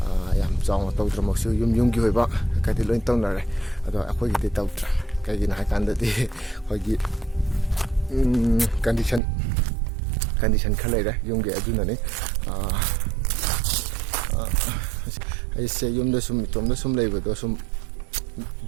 yam chong tawdra maksu yum gi hoiba kadi loin tawnare ado akhoi gi tawtra kagi na kan da di khoi gi condition khalai ra yum gi aduna ne ai se yum da sum tom da sum leiba do sum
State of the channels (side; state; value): left; drops out; at 9.2 s